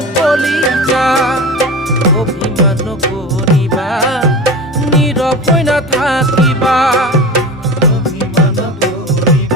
কলিজা অভিমান নকৰিবা নীৰৱ হৈ নাথাকিবা অভিমান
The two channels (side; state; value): both; normal; correlation 0.31